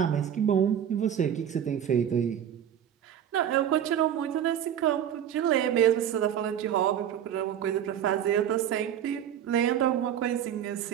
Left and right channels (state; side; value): quieter; left; 9.8 dB